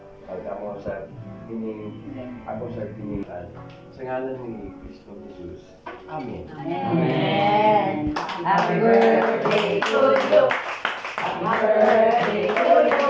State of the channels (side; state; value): both; identical; correlation 1.00